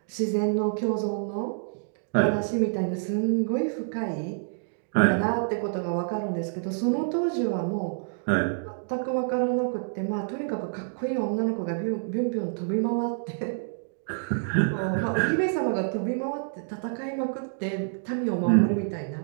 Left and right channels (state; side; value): silent; left; digital silence